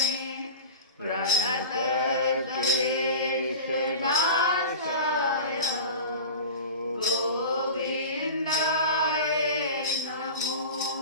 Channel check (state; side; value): inverted; both; correlation -0.33